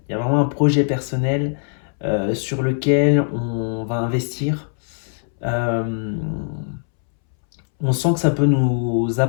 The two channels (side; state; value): right; silent; 65 dB below the other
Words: Il y a vraiment un projet personnel sur lequel on va investir. Euh, on sent que ça peut nous